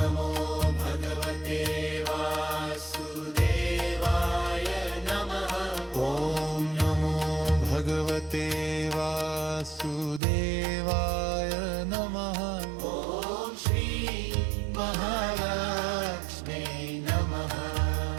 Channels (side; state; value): left; drops out; at 10.2 s